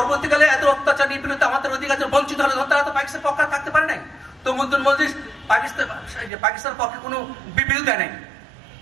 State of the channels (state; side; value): drops out; left; at 6.3 s